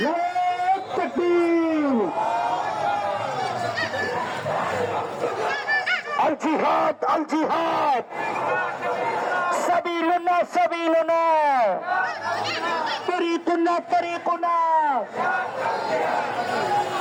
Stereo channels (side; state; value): both; identical; correlation 1.00